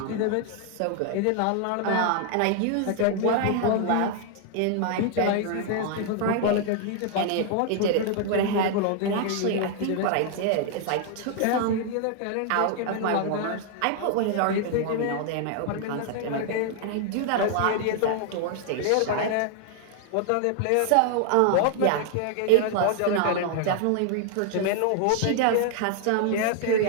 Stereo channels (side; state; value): both; different; correlation 0.00